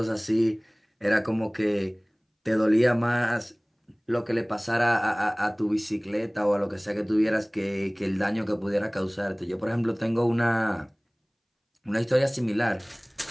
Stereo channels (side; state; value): both; identical; correlation 1.00